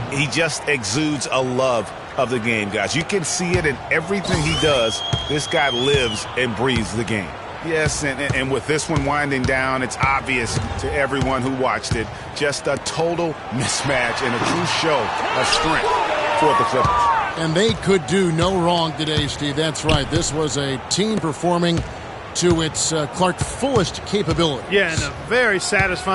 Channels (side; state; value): both; identical; correlation 1.00